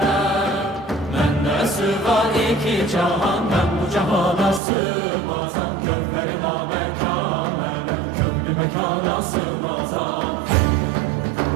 Mende sığar iki cahan, ben bu cahana sığmazam. Kökleri namekâmele, köklü mekana sığmazam.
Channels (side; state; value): left; drops out; at 4.6 s